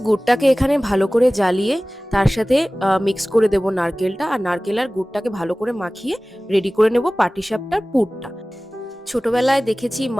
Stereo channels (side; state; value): both; normal; correlation 0.98